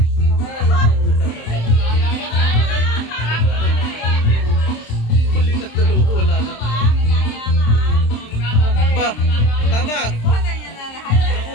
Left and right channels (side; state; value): right; late; 27 ms